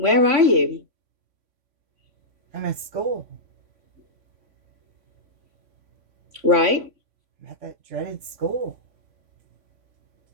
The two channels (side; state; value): left; late; 3.5 ms